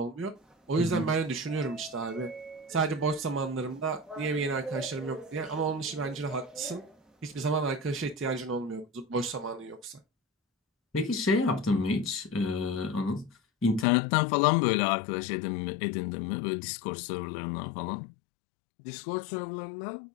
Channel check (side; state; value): right; drops out; at 13.9 s